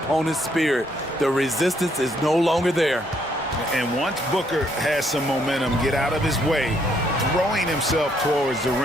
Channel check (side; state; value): both; normal; correlation 0.71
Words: spirit. The resistance is no longer there. And once Booker has some momentum, get out of his way, throwing himself towards the